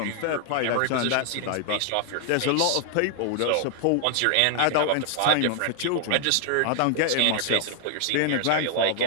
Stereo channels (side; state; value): both; different; correlation 0.00